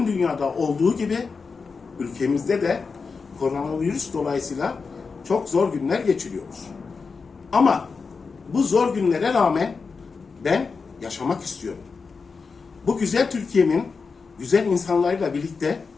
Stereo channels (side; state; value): right; quieter; 4.9 dB